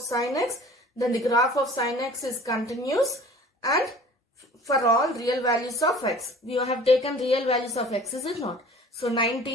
x, then the graph of sine x is continuous and for all real values of x. We have taken real values of x, is it not? So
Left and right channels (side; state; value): both; normal; correlation 0.46